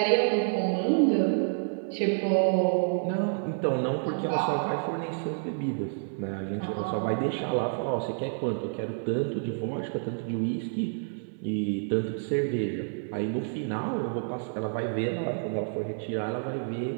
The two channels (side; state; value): left; silent; 59 dB below the other